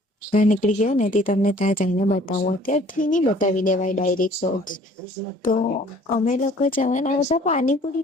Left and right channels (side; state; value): both; normal; correlation 0.54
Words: ગયા ને તે તમને ત્યાં જઈને બતાવું. અત્યારથી નહીં બતાવી દેવાય ડાયરેક્ટ શોર્ટ્સ. તો અમે લોકો જવાના હતા